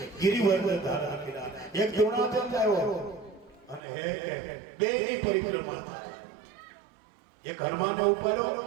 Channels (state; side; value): drops out; left; at 3.8 s